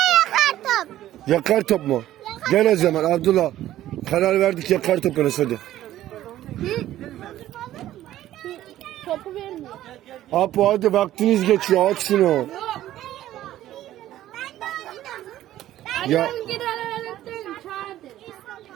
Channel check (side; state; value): left; quieter; 13.5 dB